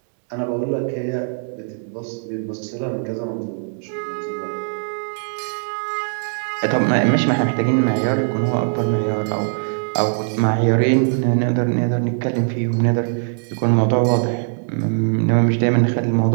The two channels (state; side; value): silent; left; digital silence